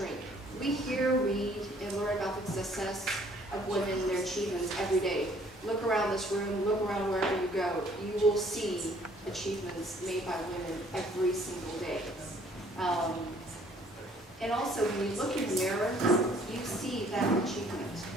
We hear, read, and learn about the success of women and their achievements every day. Look around this room, look around wherever you go. You will see achievements made by women every single day. And also, when you look in the mirror, you see that achievement.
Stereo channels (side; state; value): both; normal; correlation 0.60